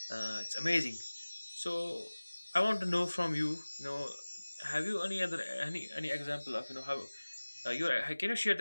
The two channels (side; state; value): both; inverted; correlation -1.00